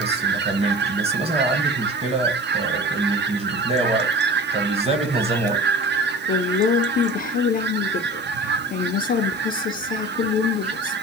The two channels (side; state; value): both; normal; correlation 0.37